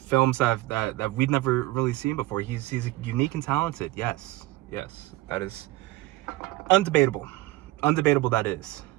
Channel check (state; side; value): quieter; left; 18.2 dB